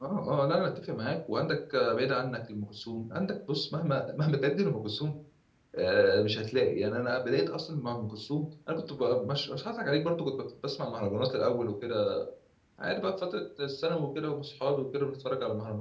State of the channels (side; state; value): both; identical; correlation 1.00